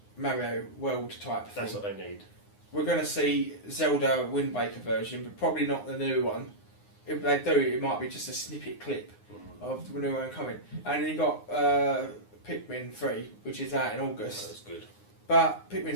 Mario World type thing. That's what they need. We're going to see Zelda Wind Waker version, but probably not the new one. If they do, it might be just a snippet clip of the new one coming. And then you got Pikmin 3, which is out in August. That's good. But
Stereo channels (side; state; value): right; late; 9.7 ms